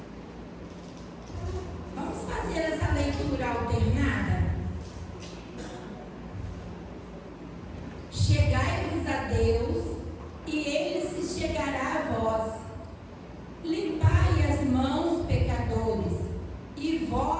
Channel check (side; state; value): both; identical; correlation 1.00